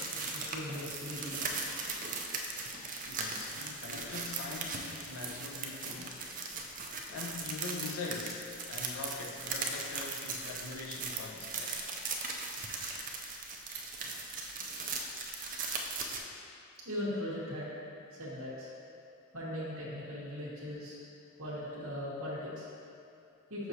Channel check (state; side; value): normal; both; correlation 0.11